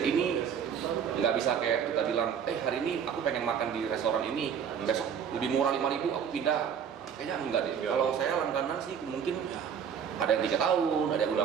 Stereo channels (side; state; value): left; quieter; 7.7 dB